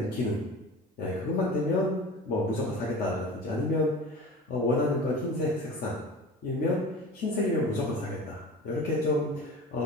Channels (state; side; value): normal; both; correlation 0.37